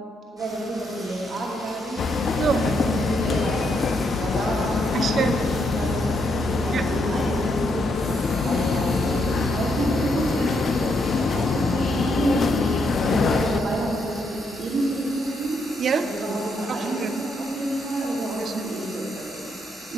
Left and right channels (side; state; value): both; normal; correlation 0.77